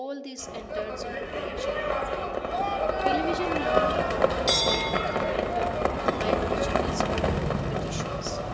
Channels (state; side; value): identical; both; correlation 1.00